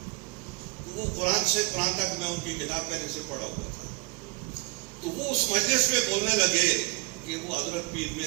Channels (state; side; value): quieter; left; 27.8 dB